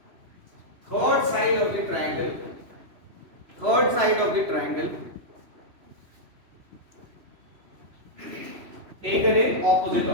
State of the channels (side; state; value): left; late; 3.0 ms